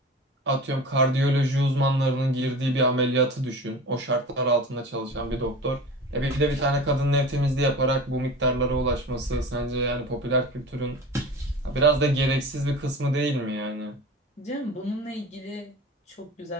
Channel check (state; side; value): normal; both; correlation 0.35